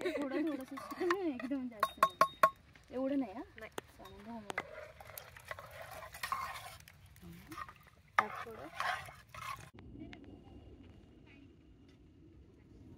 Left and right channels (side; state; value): both; identical; correlation 1.00